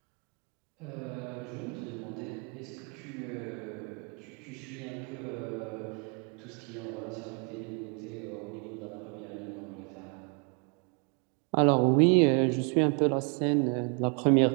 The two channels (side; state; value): left; quieter; 37.0 dB